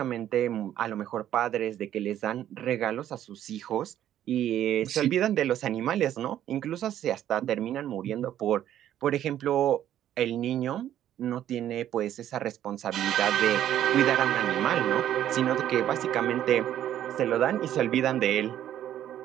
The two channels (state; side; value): quieter; left; 11.4 dB